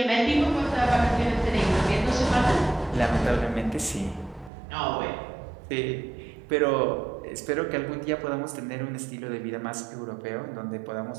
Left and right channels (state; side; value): drops out; left; at 4.5 s